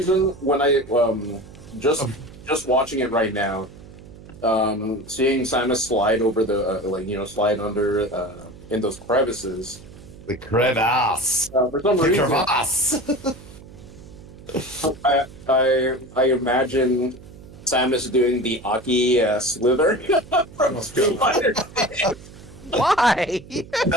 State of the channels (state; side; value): noise; right; hum, 18 dB below the sound